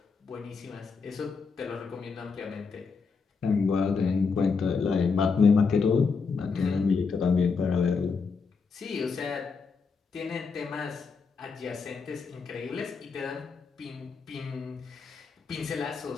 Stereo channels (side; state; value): right; quieter; 5.1 dB